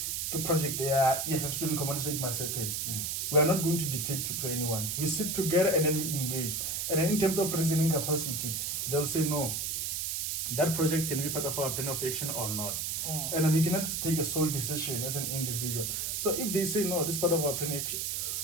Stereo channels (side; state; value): right; noise; hiss, 1 dB below the sound